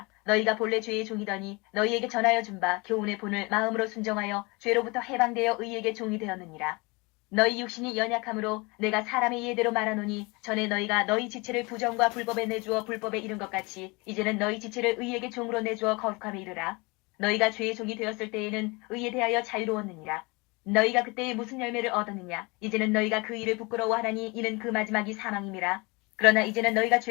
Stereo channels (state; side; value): quieter; right; 26.6 dB